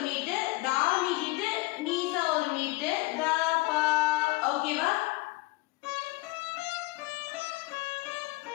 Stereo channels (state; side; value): quieter; right; 22.0 dB